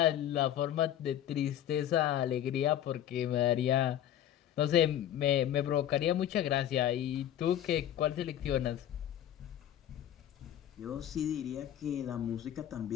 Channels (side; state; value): right; quieter; 11.2 dB